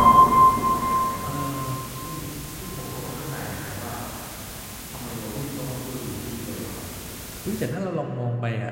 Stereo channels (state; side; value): identical; both; correlation 1.00